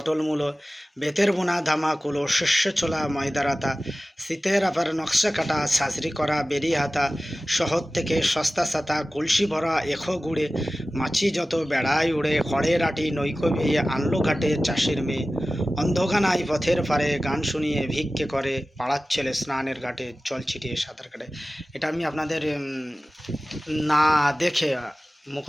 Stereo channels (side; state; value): both; normal; correlation 0.96